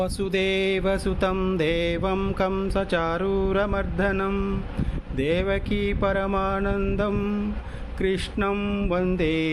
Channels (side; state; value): both; identical; correlation 1.00